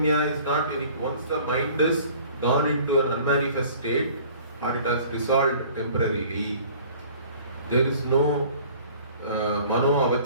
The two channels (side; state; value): both; inverted; correlation -0.50